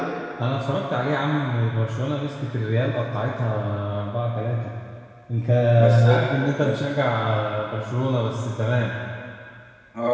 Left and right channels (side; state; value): both; identical; correlation 1.00